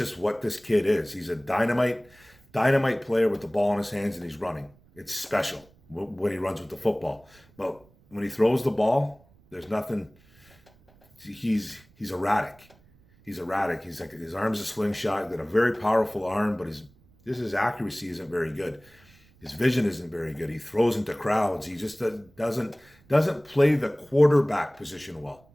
what this kid is. He's a dynamite player with the ball in his hands, and he's running. It's special when he runs with the football. But when he throws the ball, there's nothing. He's erratic. He's erratic. He's like, his arm's a slingshot. He's got a very powerful arm, but his accuracy isn't very good. His vision isn't very good. He throws into crowds. He just doesn't play the quarterback position well.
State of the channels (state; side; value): noise; right; rumble, 29 dB below the sound